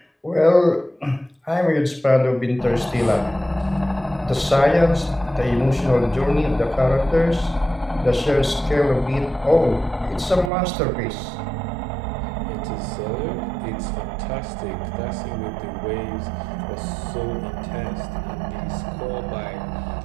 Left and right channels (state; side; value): drops out; left; at 10.5 s